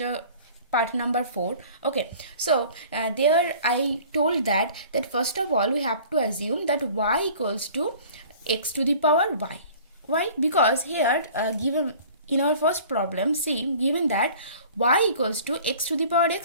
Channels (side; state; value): both; inverted; correlation -0.47